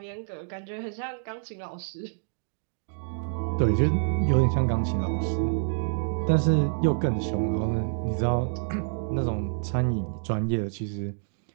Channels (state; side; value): silent; left; digital silence